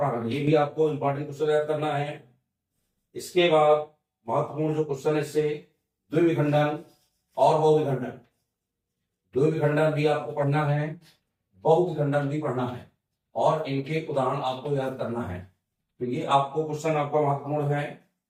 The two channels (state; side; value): identical; both; correlation 1.00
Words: ये भी आपको इंपॉर्टेंट क्वेश्चन याद करना है। इसके बाद महत्वपूर्ण जो क्वेश्चन है इससे द्विविखंडन और बहुविखंडन। द्विविखंडन भी आपको पढ़ना है, बहुविखंडन भी पढ़ना है और इनके उदाहरण आपको याद करना है। तो ये आपको क्वेश्चन आपका महत्वपूर्ण है।